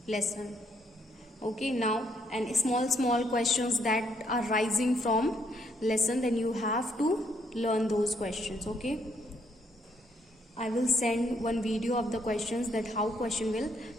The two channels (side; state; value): both; normal; correlation 0.72